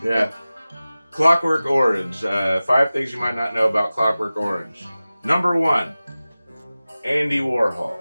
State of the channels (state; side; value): inverted; both; correlation -0.96